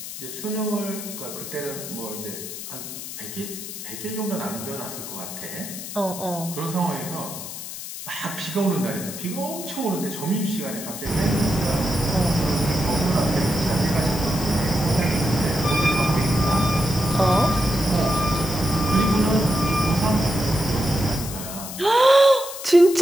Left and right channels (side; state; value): left; noise; hiss, 9 dB below the sound